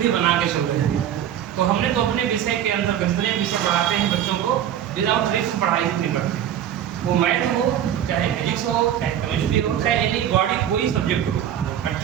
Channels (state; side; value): quieter; left; 10.3 dB